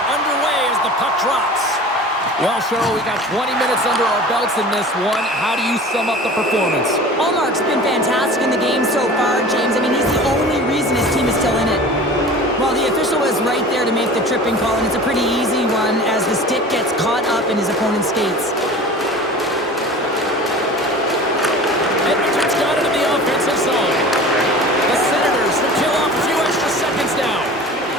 underway as the puck drops. Well, Cheryl, we got 20 minutes under our belts in this one. How do you sum up the performance? Allmark's been fantastic in the game so far, James. I mean, he's the only reason his team is still in it. Well, the official was right there to make the tripping call, and it's a pretty easy one as the stick gets caught up in his opponent's skates. Edmonton's got it in the offensive zone. The Senators will kill off a few extra seconds now.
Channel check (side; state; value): both; normal; correlation 0.39